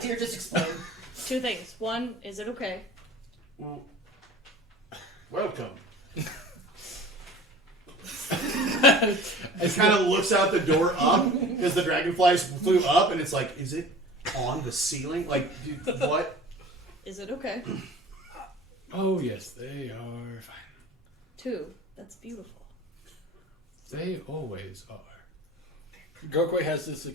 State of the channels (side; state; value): both; normal; correlation 0.41